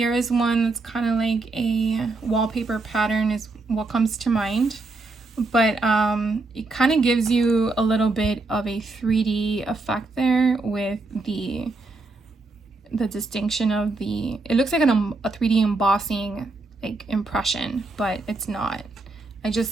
is one that's kind of like a wallpaper pattern is what comes to mind. But it kind of gives you a little bit of a 3D effect there with the distinction of the, it looks like a 3D embossing like impression, but it's not. I just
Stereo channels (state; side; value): quieter; left; 3.4 dB